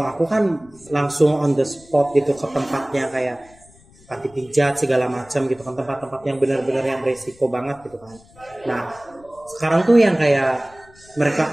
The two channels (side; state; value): left; noise; rumble, 27 dB below the sound